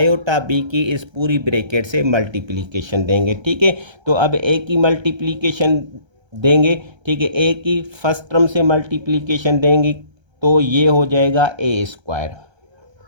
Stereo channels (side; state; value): left; late; 1.3 ms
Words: बी की इस पूरी ब्रैकेट से मल्टीप्लिकेशन देंगे। ठीक है, तो अब ए की मल्टीप्लिकेशन देंगे। ठीक है, ए की फर्स्ट टर्म से मल्टीप्लिकेशन देंगे तो ये हो जाएगा A square